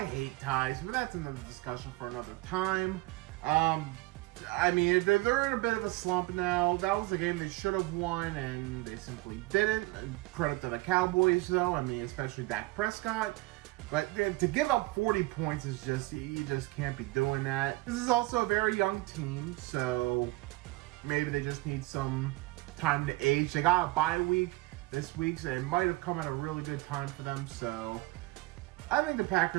hate ties, but that's another discussion for another time. I mean, they're in a bit of a slump now. That was a game they should have won, and they simply didn't. Credit to the Cowboys, though. I mean, especially Dak Prescott. But to give up 40 points is just, you just can't be doing that. This is also a very young team, so maybe they just need some time to age. They got a bye week this week, so it might have come at a really good time for them. So I think the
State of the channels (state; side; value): quieter; left; 21.1 dB